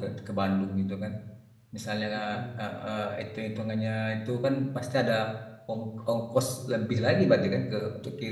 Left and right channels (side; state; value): both; identical; correlation 1.00